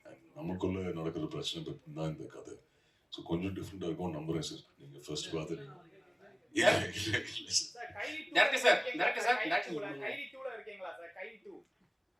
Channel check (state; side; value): identical; both; correlation 1.00